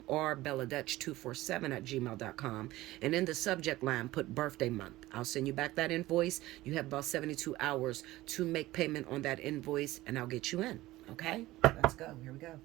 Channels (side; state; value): left; quieter; 17.5 dB